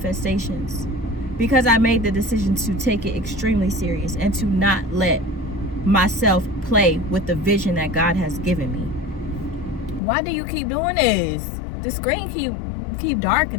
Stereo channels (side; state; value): right; drops out; at 10.0 s